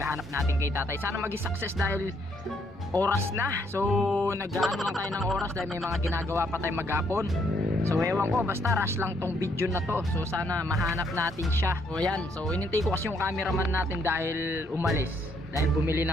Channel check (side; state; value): both; normal; correlation 0.71